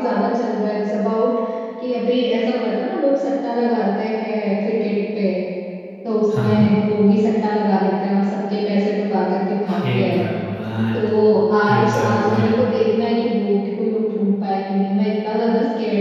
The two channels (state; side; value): identical; both; correlation 1.00